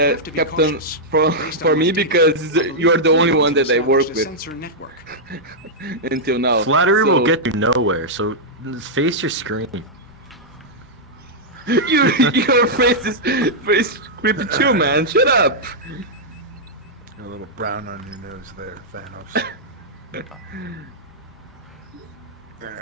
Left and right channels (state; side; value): normal; both; correlation -0.07